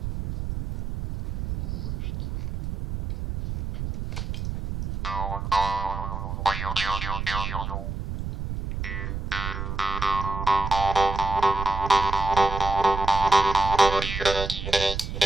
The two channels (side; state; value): right; noise; rumble, 5 dB below the sound